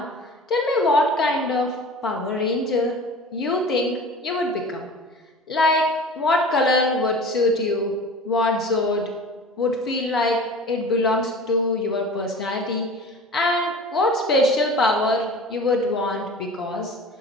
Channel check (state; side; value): normal; both; correlation 0.39